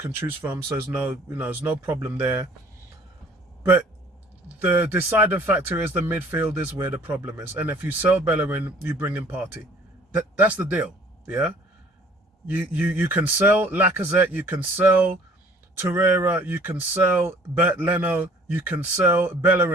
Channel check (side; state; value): both; normal; correlation 0.54